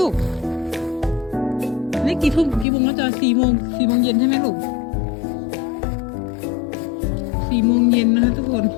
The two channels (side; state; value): right; drops out; at 2.7 s